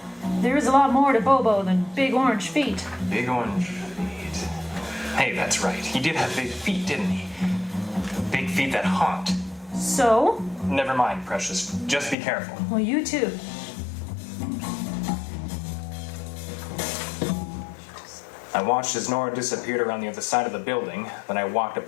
There is a lot more to Bobo than big orange feet. Big orange feet. Hey, that's right. He did have big feet, didn't he? Big feet that haunt. So? Never mind, Precious. Just be careful. Well, you too. I watched as Nora disappeared around the other side of the building. Then I walked up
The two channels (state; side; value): drops out; right; at 12.2 s